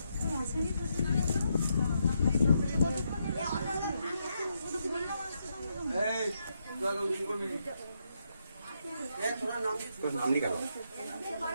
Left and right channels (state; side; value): inverted; both; correlation -0.80